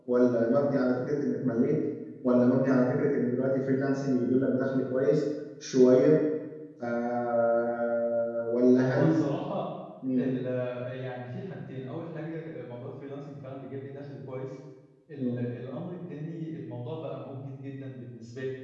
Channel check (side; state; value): both; identical; correlation 1.00